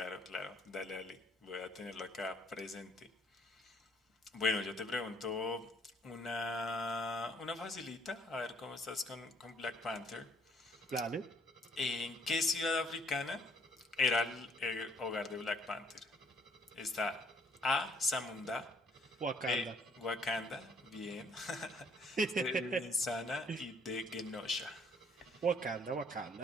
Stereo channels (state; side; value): normal; both; correlation 0.63